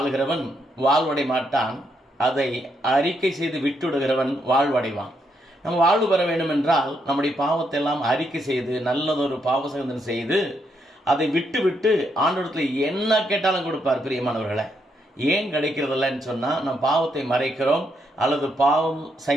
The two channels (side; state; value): both; normal; correlation 0.77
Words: வாழ்வடை மாட்டான், அதை அறிக்கை செய்து விட்டுவிடுகிறவன் வாழ்வடைவான். நம்ம வாழ்வு பெற வேண்டும் என்றால் நம்முடைய பாவத்தை எல்லாம் அறிக்கை செய்து நல்லதொரு பாவசங்கதனை செய்து அதை விட்டு விட்டு ஆண்டவரிடத்தில் என்ன கேட்டாலும் கொடுப்பார். பிரியமானவர்களை, ஏன் கிடைக்கிறதில்லன்னு சொன்னால், நம்ம பாவத்தை மறைக்கிறோம், அல்லது பாவம்